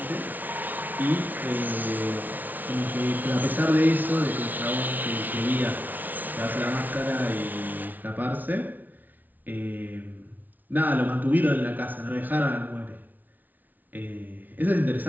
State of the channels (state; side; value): late; left; 0.081 ms